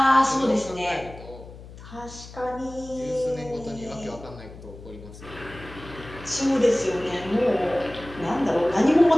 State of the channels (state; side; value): noise; left; hum, 16 dB below the sound